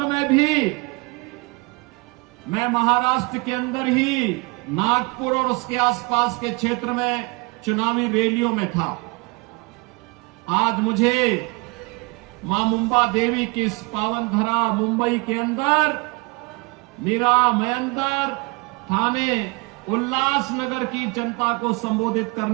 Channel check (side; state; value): left; quieter; 28.3 dB